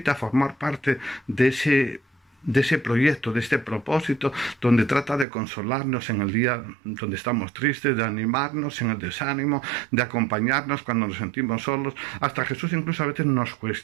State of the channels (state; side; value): drops out; left; at 5.2 s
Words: a formar parte de ese proyecto, de este propósito, donde trata de consolarnos en el día donde estamos tristes, de animarnos en el desánimo, de acompañarnos cuando nos sentimos solos. Hasta Jesús incluso a veces nos